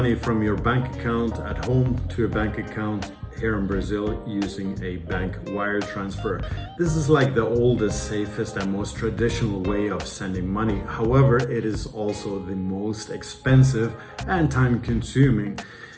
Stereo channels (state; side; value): identical; both; correlation 1.00